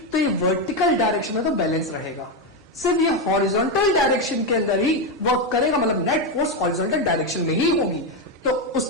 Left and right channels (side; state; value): both; normal; correlation 0.08